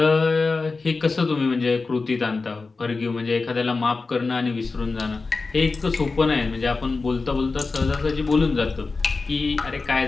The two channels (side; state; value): right; quieter; 4.0 dB